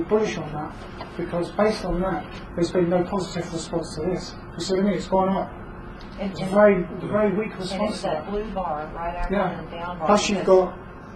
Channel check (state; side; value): identical; both; correlation 1.00